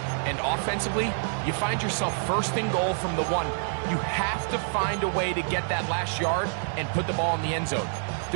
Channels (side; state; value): left; silent; 60 dB below the other